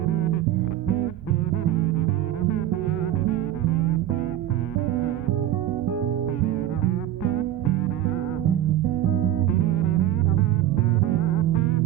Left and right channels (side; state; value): left; quieter; 12.4 dB